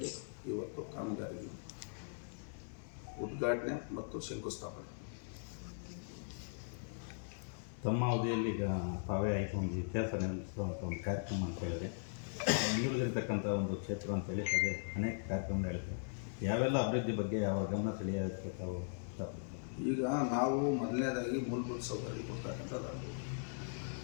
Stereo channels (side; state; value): right; silent; digital silence